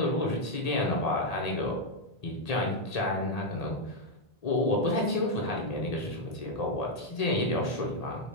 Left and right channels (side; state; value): right; late; 1.8 ms